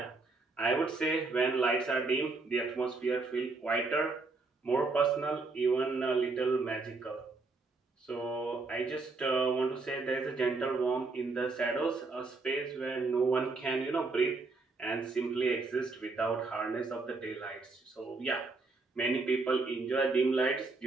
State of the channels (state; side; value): quieter; left; 3.7 dB